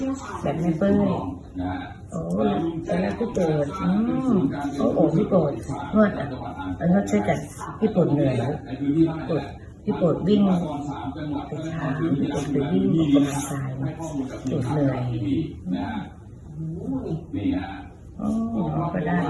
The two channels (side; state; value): both; identical; correlation 1.00